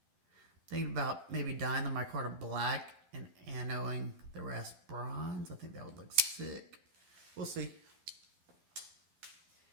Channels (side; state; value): left; late; 12 ms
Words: Thinking about maybe dyeing the micarta black and anoing the rest bronze. I think that would look sick. We'll see.